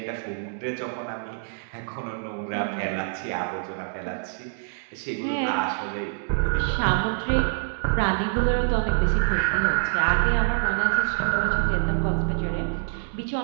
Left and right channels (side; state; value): left; silent; digital silence